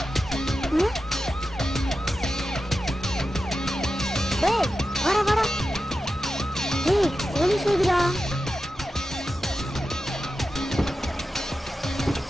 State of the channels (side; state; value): both; normal; correlation 0.92